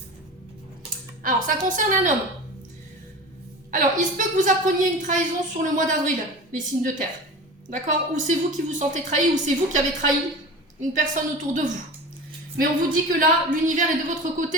Alors, ça concerne un homme. Alors, il se peut que vous appreniez une trahison sur le mois d'avril, les signes de terre. D'accord? Ou c'est vous qui vous sentez trahi, ou c'est vous qui avez trahi une personne autour de vous. Mais on vous dit que là, l'univers est de votre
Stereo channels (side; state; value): both; normal; correlation 0.33